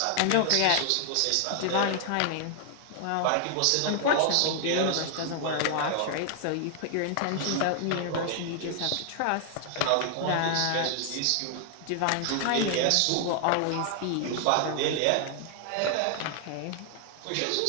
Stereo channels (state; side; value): different; both; correlation 0.00